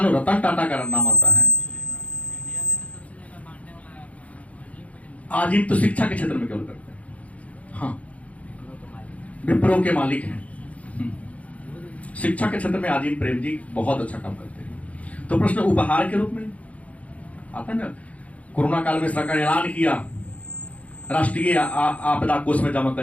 रतन टाटा का नाम आता है। आजीम तो शिक्षा के क्षेत्र में केवल करते हैं, हाँ, विप्रो के मालिक हैं। शिक्षा के क्षेत्र में आजीम प्रेम जी बहुत अच्छा काम करते हैं। तो प्रश्न उपहार के रूप में आता है ना। कोरोना काल में सरकार ने ऐलान किया राष्ट्रीय आपदा कोष में जमा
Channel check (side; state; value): right; late; 0.067 ms